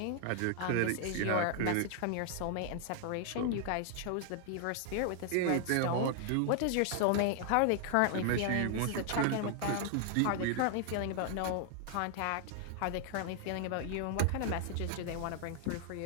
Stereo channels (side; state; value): both; different; correlation 0.00